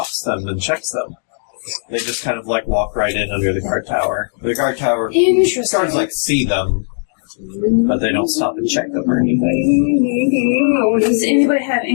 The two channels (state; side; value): silent; right; digital silence